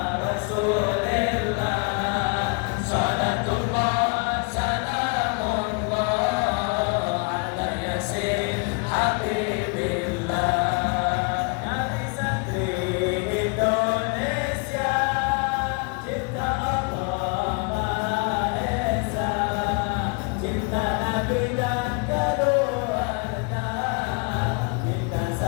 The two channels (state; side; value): quieter; right; 33.9 dB